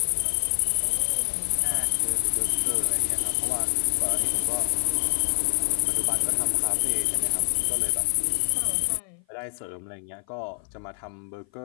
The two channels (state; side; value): silent; right; 56 dB below the other